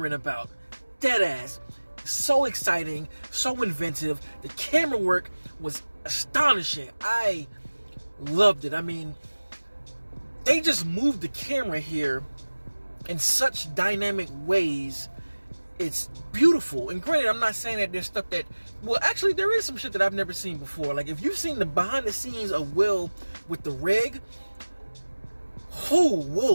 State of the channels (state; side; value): inverted; both; correlation -1.00